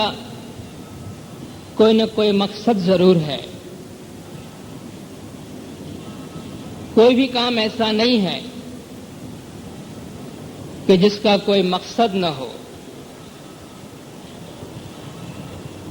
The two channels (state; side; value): identical; both; correlation 1.00